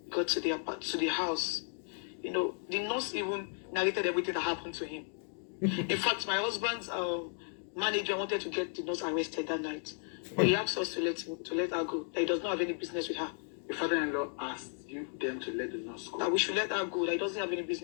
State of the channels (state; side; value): silent; right; 55 dB below the other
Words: got to the house, you know, the nurse even narrated everything that happened to him. In fact, my husband's manager wanted to get the nurse arrested that night, but he asked us to let her go. That he does not have any business with her. Your father-in-law asked them to let the nurse go. That we should let her go. That he doesn't have any